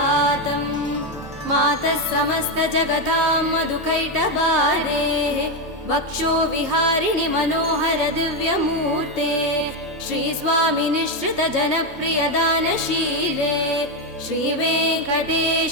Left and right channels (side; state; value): both; normal; correlation 0.08